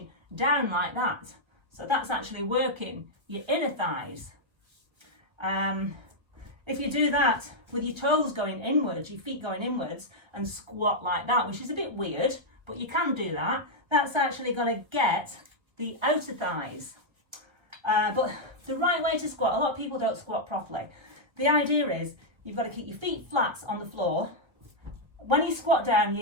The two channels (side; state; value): left; late; 1.1 ms